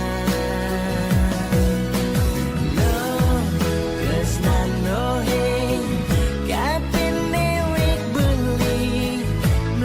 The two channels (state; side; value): identical; both; correlation 1.00